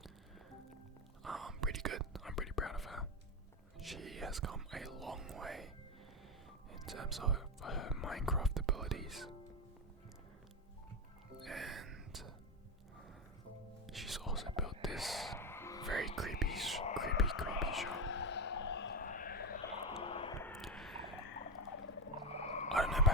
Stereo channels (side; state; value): both; normal; correlation 0.12